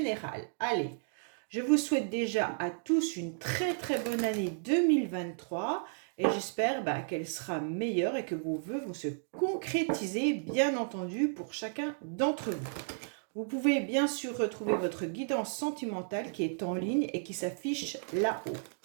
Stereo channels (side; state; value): left; silent; digital silence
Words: Allez, je vous souhaite déjà à tous une très bonne année 2023 et j'espère qu'elle sera meilleure et que vos vœux vont se concrétiser, bien entendu, pour chacun d'entre vous. Vous pouvez bien sûr retrouver votre guidance sentimentale qui est en ligne et qui s'affiche là-haut,